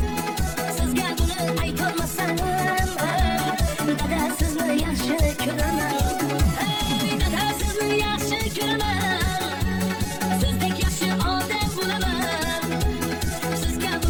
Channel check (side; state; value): both; identical; correlation 1.00